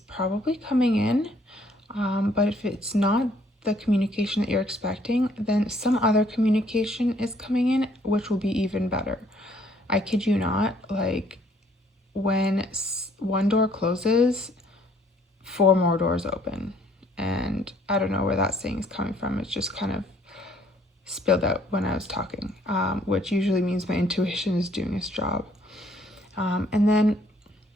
probably coming in, but if it's not the communication that you're expecting, then some other communication is coming in, which will be even better. I kid you not, like when one door closes, 4 more doors open. And I don't know where that saying is coming from. It's just kind of spilled out when I was talking, which usually means my intuition is doing its job. And then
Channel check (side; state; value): both; normal; correlation 0.63